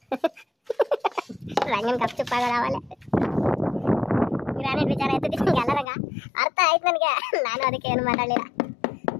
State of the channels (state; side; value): drops out; right; at 5.9 s